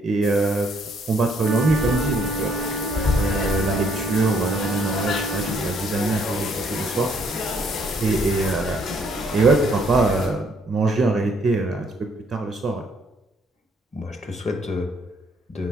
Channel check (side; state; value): both; normal; correlation 0.67